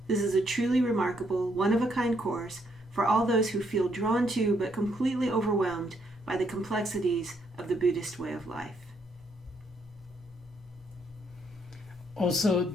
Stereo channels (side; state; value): both; normal; correlation 0.73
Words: This is a truly remarkable, one-of-a-kind course for all those who feel drawn to but completely overwhelmed by the complexities of the Buddhist way of life. Also,